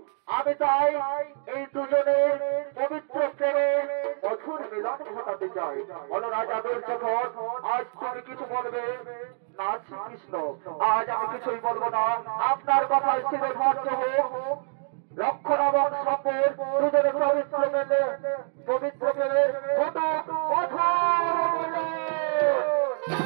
আমি তাই এই দুজনের পবিত্র প্রেমে মধুর মিলন ঘটাতে চাই। বলো রাজা দুর্যোধন, আজ তুমি কিছু বলবে না? শ্রীকৃষ্ণ, আজ আমি কিছুই বলবো না। আপনার কথায় স্থিরে ভদ্র হোক। লক্ষণ এবং সম্পর দুজনের পবিত্র মেলে পবিত্র প্রেমে ঘটুক মধুর মিলন।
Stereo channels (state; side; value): silent; left; digital silence